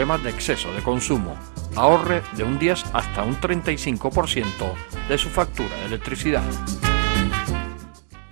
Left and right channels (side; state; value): left; silent; 60 dB below the other